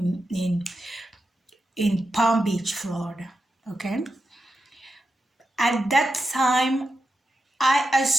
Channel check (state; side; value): normal; both; correlation 0.89